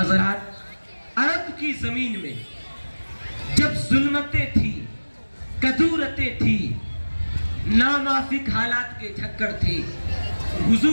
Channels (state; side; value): inverted; both; correlation -1.00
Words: عرب کی زمین میں جب ظلمتیں تھی، کدورتیں تھی، ناموافق حالات کے جھکڑ تھے،